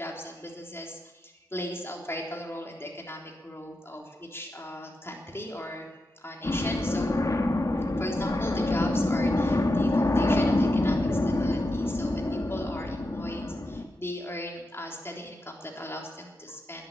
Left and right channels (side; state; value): both; normal; correlation 0.87